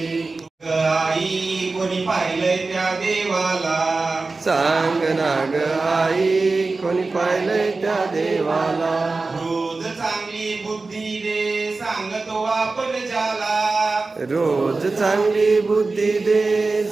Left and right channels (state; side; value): quieter; left; 3.7 dB